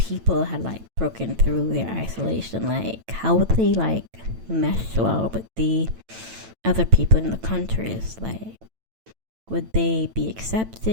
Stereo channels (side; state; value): left; late; 9.0 ms